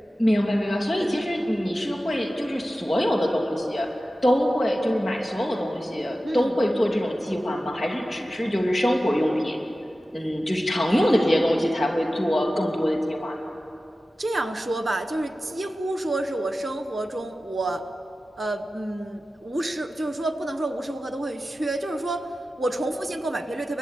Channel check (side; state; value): both; normal; correlation 0.95